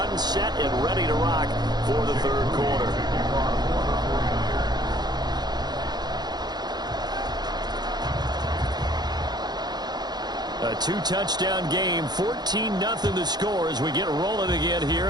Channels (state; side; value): late; left; 0.20 ms